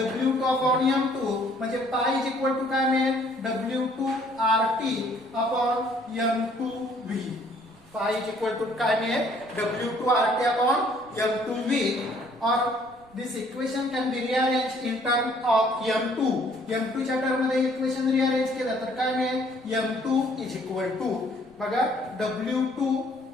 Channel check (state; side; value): noise; right; rumble, 28 dB below the sound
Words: अपॉन m2 म्हणजे पाय इज इक्वल टू काय मिळेल W2 RT upon m2 v पाय इज इक्वल टू काय मिळेल W2 RT upon m2 v और this equation can be rearranged in term of m2 m2 च्या टर्म मध्ये इक्वेशन रिअरेंज केलं तर काय मिळेल m2 इज इक्वल टू बघा W2